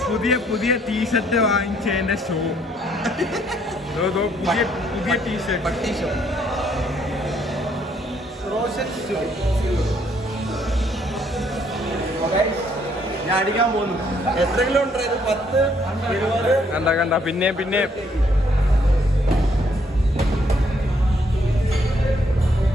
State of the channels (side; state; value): both; normal; correlation 0.68